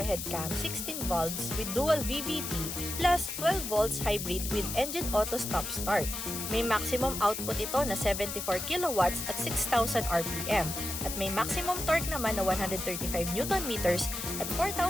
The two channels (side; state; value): left; noise; hiss, 5 dB below the sound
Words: cam, 16 valves with dual VVT plus 12 volts hybrid with engine auto stop start. May maximum output ito na 74 kilowatts at 6,000 RPM at may maximum torque naman na 135 Nm at